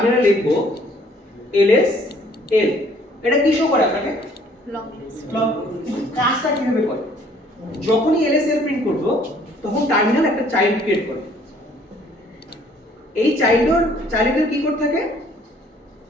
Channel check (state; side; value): normal; both; correlation 0.60